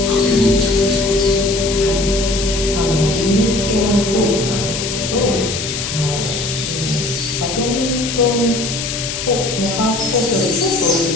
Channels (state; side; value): noise; left; hiss, 5 dB below the sound